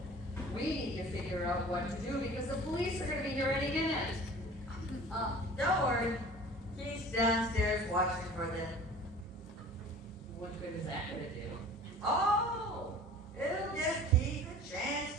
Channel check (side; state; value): both; normal; correlation 0.44